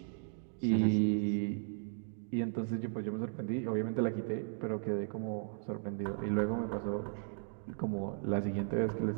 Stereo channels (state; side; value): silent; left; digital silence